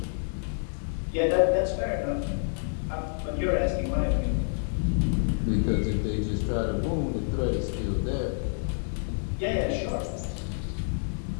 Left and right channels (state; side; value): silent; right; digital silence